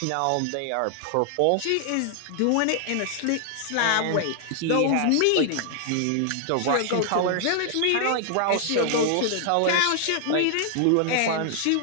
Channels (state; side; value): different; both; correlation 0.00